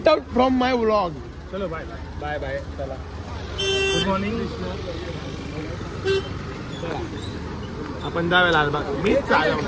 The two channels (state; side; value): identical; both; correlation 1.00